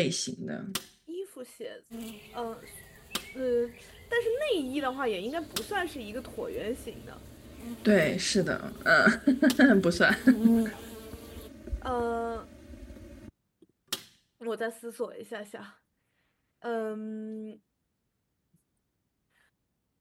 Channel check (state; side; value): identical; both; correlation 1.00